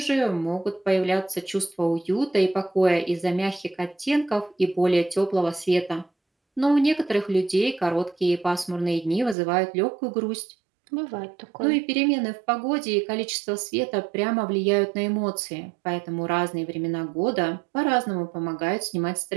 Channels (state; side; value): drops out; left; at 9.3 s